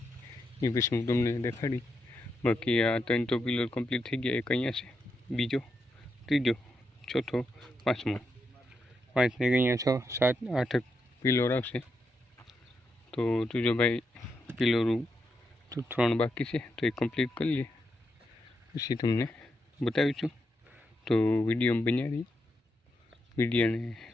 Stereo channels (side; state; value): both; normal; correlation 0.83